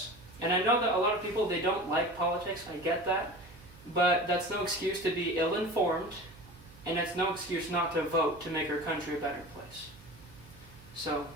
And I know that a lot of people, they don't like politics. I get that. But that's no excuse to be ill-informed, and it's no excuse not to vote to make our country a better place. So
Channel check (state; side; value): noise; right; hum, 22 dB below the sound